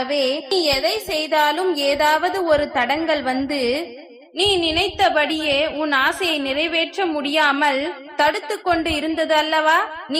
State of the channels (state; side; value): identical; both; correlation 1.00